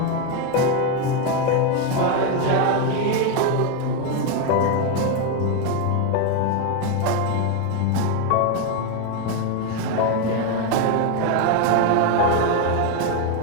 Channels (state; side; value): different; both; correlation 0.02